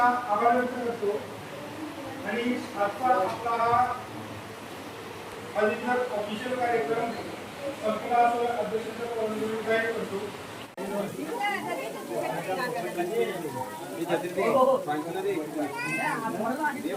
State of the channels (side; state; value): both; identical; correlation 1.00